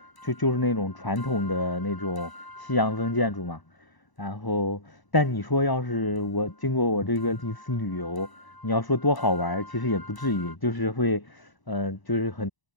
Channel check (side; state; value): right; late; 1.0 ms